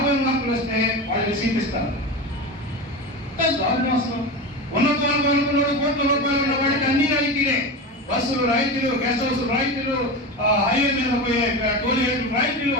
మార్కులు వస్తే వాళ్ళకి సీట్ ఇస్తారు. అసలు ఉన్నతనుకున్నాడు కోట్ల రూపాయలు ఉన్న వాడికి అన్ని రాయితీలే. బస్సులు రాయితీలు, గెస్ట్ హౌస్ రాయితీలు, హైవే మీద పోయే టోల్ గేట్లు రాయితీలు,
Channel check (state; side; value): normal; both; correlation 0.24